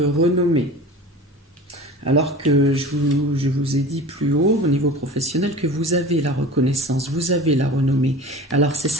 Alors que je vous ai dit plus haut, au niveau professionnel, que vous avez la reconnaissance, vous avez la renommée. Alors c'est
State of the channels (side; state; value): both; normal; correlation 0.37